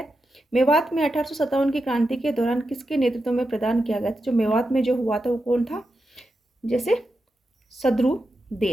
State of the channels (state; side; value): normal; both; correlation 0.88